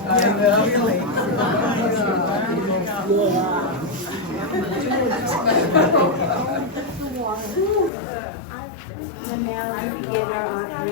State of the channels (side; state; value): right; drops out; at 7.9 s